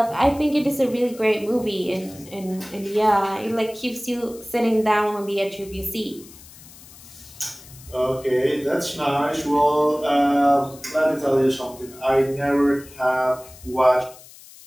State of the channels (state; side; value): noise; left; hiss, 20 dB below the sound